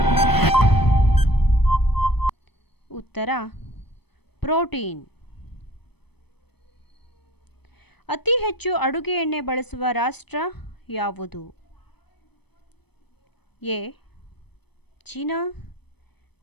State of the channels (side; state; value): right; late; 0.98 ms